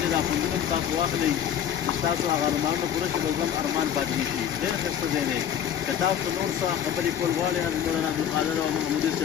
ځای دا خوندونه هم تاسو واخلئ چې ستاسو هغه ارمانونه پوره شي، بل هم ارمان پاتې نه شي. ډېر ښایسته ځای دی. که تاسو نور څه خبرې کول غواړئ حضرت مولانا عبدالقادر او محمودي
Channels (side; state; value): right; quieter; 9.4 dB